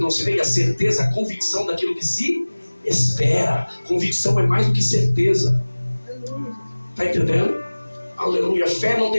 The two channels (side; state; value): both; inverted; correlation -1.00